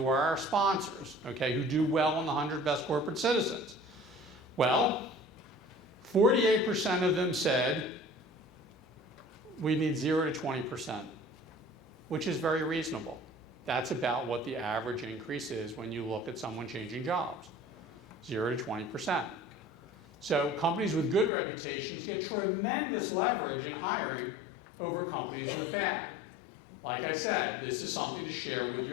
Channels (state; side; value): drops out; right; at 21.3 s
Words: are our sponsors, okay, who do well on the 100 Best Corporate Citizens. Well, 48% of them said we need 0 to 20%, which is very reasonable. That's about what the average increase is when you look at someone changing jobs, 0 to 20%. So companies with good reputations get tremendous leverage in hiring over companies with bad. Like I said, this is something to share with